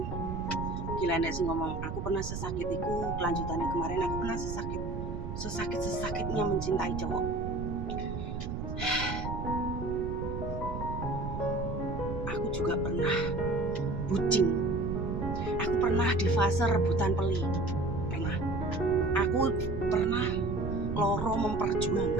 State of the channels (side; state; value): right; noise; rumble, 5 dB below the sound